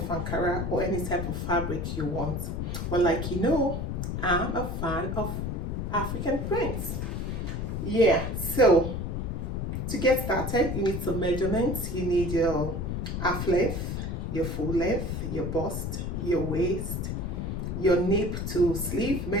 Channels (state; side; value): noise; left; rumble, 2 dB below the sound